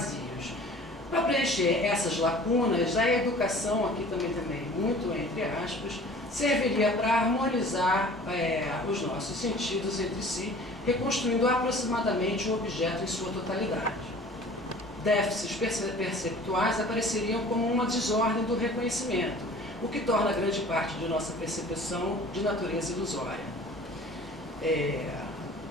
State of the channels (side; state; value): both; normal; correlation 0.47